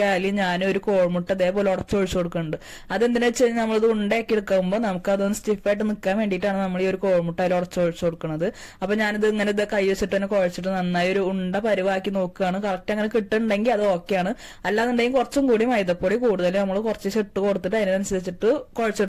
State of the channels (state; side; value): identical; both; correlation 1.00